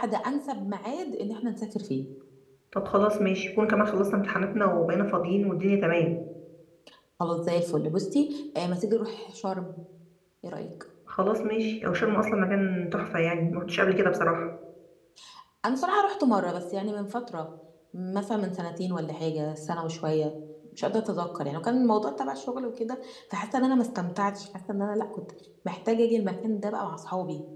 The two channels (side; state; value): both; identical; correlation 1.00